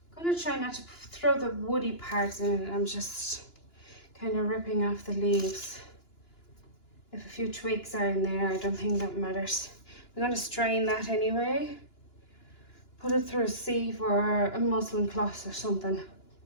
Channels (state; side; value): late; right; 2.9 ms